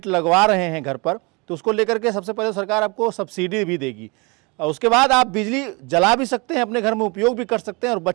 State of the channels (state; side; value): quieter; left; 28.5 dB